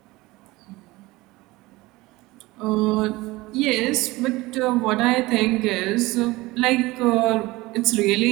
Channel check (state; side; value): quieter; left; 20.4 dB